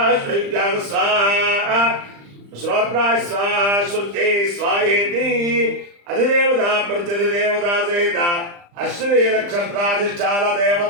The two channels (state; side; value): late; left; 35 ms